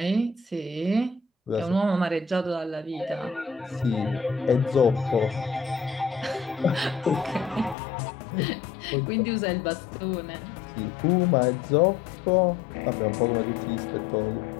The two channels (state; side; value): drops out; right; at 7.8 s